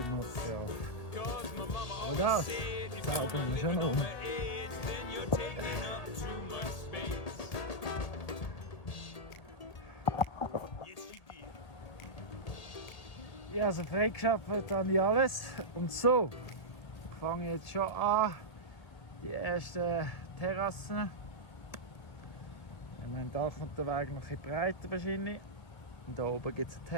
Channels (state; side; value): late; right; 1.8 ms